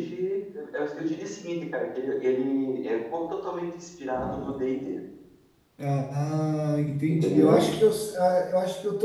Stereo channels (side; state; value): both; identical; correlation 1.00